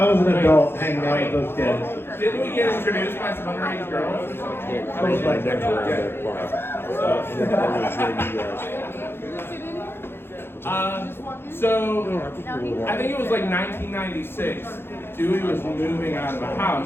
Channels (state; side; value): late; right; 0.11 ms